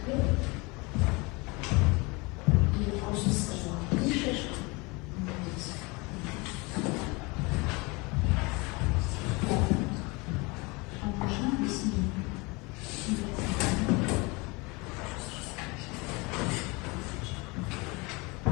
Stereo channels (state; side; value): quieter; right; 26.5 dB